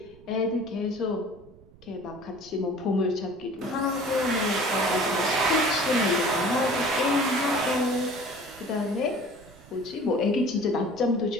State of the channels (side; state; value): right; noise; rumble, 24 dB below the sound